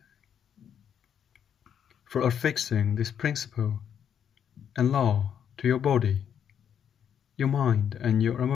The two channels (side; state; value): right; quieter; 8.6 dB